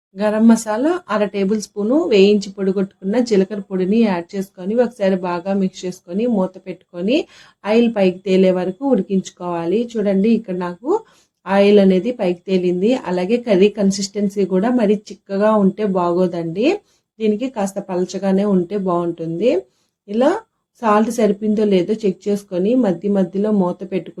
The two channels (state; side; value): identical; both; correlation 1.00